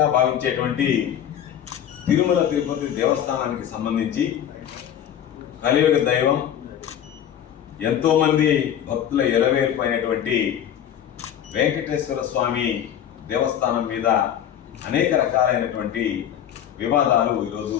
భావించేటువంటి తిరుమల తిరుపతి దేవస్థానానికి సంబంధించి కలియుగ దైవం, ఎంతోమంది భక్తుల ఎలవేల్పైనటువంటి వెంకటేశ్వర స్వామి దేవస్థానం మీద అనేక రకాలైనటువంటి వివాదాలు ఈరోజు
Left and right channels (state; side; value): quieter; right; 9.9 dB